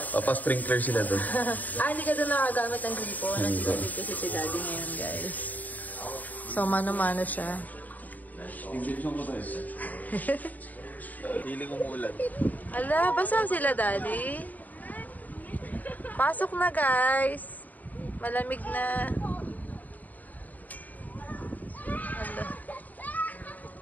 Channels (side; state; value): right; late; 0.080 ms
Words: Papa-sprinkler sila doon. Hindi ka doon nakagamit ng gripo. Nag-igib kasi si Daddy ngayon, guys. So, mano-mano siya. Invitation ko tayo. Feeling umuulan. Ala, basa sila, Daddy. Pasok na, guys. Malamig na. Ala.